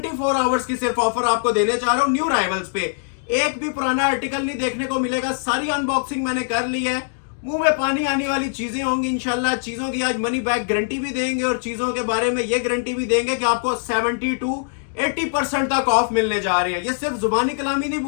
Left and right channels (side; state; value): right; silent; digital silence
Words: आवर्स की सिर्फ ऑफर आपको देने जा रहा हूं न्यू राइवल्स पे। एक भी पुराना आर्टिकल नहीं देखने को मिलेगा, सारी अनबॉक्सिंग मैंने कर ली है। मुंह में पानी आने वाली चीजें होंगी इंशाल्लाह। चीजों की आज मनी बैक गारंटी भी देंगे और चीजों के बारे में ये गारंटी भी देंगे कि आपको 70 to 80% तक ऑफ मिलने जा रहे हैं। ये सिर्फ जुबानी कलामी नहीं